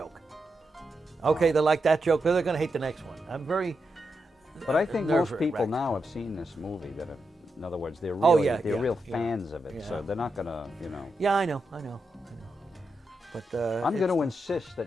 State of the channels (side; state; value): both; normal; correlation 0.86